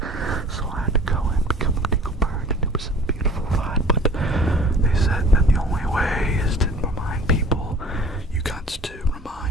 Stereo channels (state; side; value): normal; both; correlation 0.47